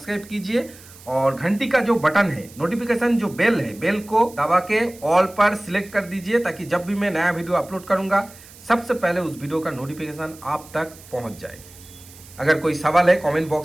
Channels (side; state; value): right; noise; hiss, 21 dB below the sound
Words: कीजिए और घंटी का जो बटन है, नोटिफिकेशन जो बेल है, बेल को दबा के ऑल पर सिलेक्ट कर दीजिए, ताकि जब भी मैं नया वीडियो अपलोड करूंगा सबसे पहले उस वीडियो का नोटिफिकेशन आप तक पहुंच जाए। अगर कोई सवाल है कमेंट